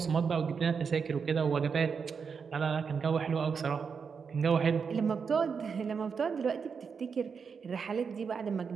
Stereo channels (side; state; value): left; quieter; 5.9 dB